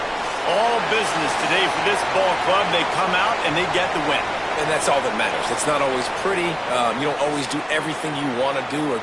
All business today for this ball club. They come out and they get the win. And that's all that matters. It's not always pretty. You don't always do everything you want to do or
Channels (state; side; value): identical; both; correlation 1.00